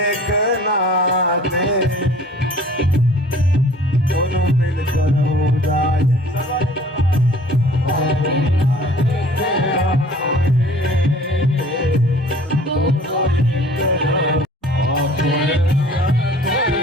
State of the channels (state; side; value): normal; both; correlation 0.50